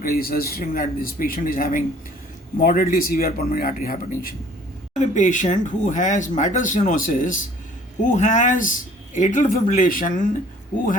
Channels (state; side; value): normal; both; correlation 0.54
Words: suggesting that this patient is having moderately severe pulmonary artery hypertension. I have a patient who has mitral stenosis, who has atrial fibrillation, who